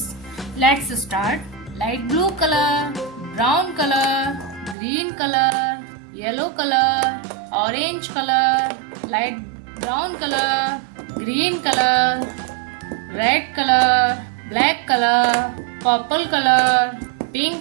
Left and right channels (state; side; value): drops out; left; at 4.8 s